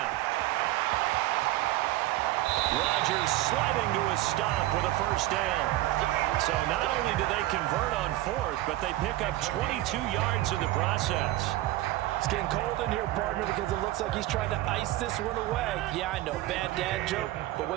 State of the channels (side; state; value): left; quieter; 16.3 dB